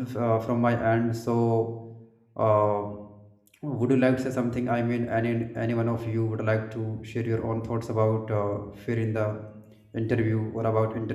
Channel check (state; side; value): identical; both; correlation 1.00